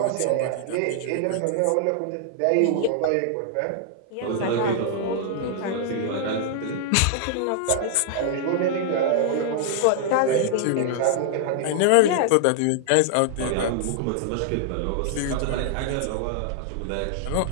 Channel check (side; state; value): both; different; correlation 0.00